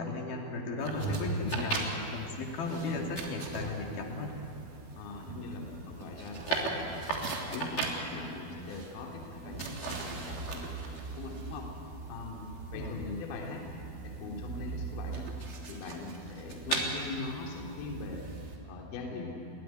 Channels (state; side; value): late; right; 12 ms